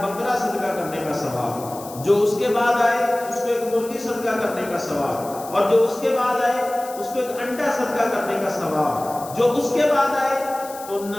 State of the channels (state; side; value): noise; left; hiss, 16 dB below the sound